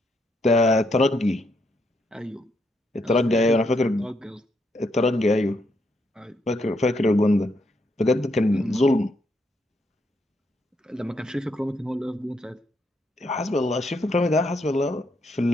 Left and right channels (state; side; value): normal; both; correlation 0.77